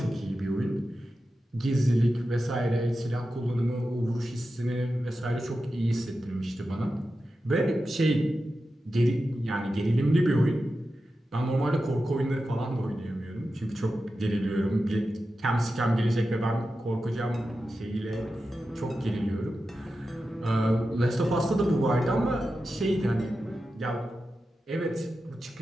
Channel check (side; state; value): both; normal; correlation 0.91